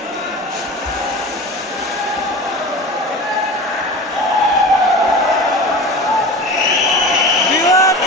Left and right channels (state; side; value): normal; both; correlation 0.33